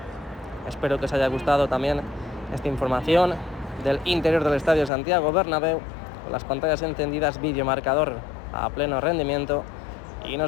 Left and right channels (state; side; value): drops out; right; at 4.9 s